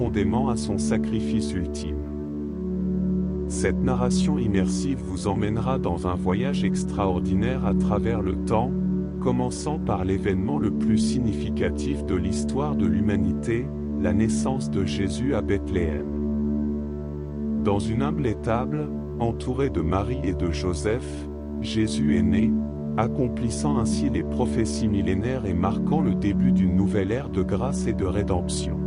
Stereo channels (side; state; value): both; identical; correlation 1.00